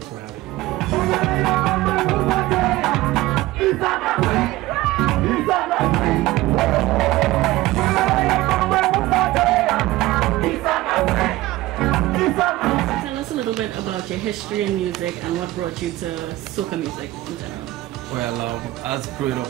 for having me. Tell us a little bit about your history in music and what brought you to soca music in general. Well, as growing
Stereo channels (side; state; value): left; quieter; 17.8 dB